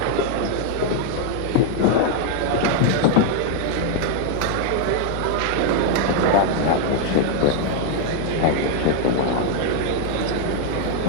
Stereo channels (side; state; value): both; different; correlation 0.00